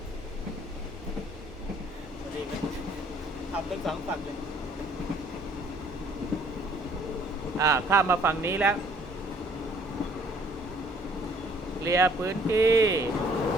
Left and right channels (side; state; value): right; noise; hum, 25 dB below the sound